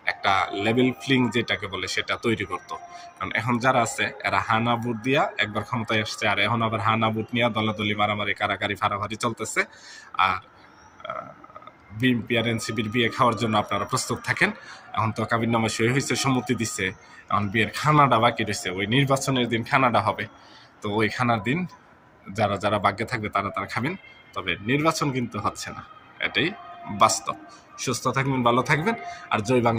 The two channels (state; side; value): identical; both; correlation 1.00